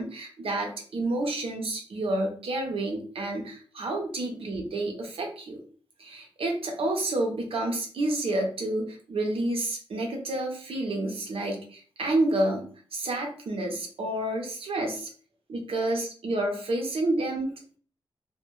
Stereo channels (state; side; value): normal; both; correlation 0.69